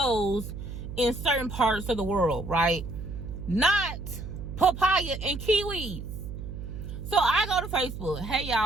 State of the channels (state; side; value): noise; right; hum, 9 dB below the sound